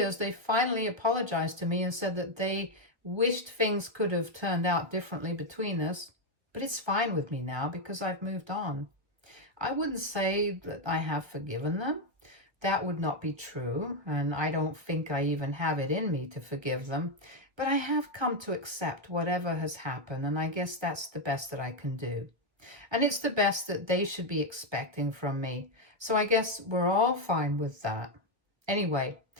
they finally apologized to me and said that they wished things could have turned out differently between us, but it's fine with me now because I've moved on. I wouldn't say that I have forgiven them. That would not be true, and I don't think I even have it in me to forgive them. But I have come to accept whatever has happened, and I guess that's the best that I can do. And it's the best that they should be expecting from me. So I guess we're all fine with that. Anyway,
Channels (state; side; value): late; left; 1.5 ms